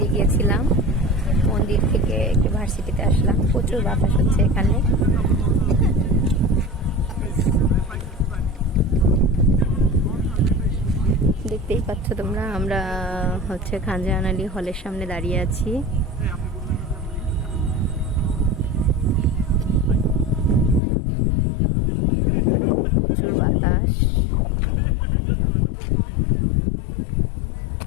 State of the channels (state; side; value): drops out; right; at 20.8 s